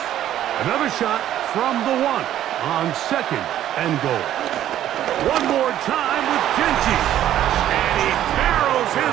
Another shot from the 1 on 2nd and goal. One more time with Genty. And he barrels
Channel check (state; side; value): quieter; left; 11.9 dB